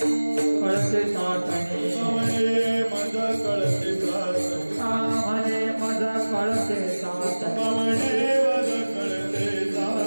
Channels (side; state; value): both; inverted; correlation -1.00